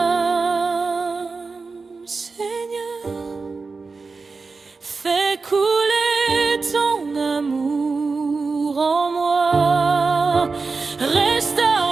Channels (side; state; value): left; quieter; 4.3 dB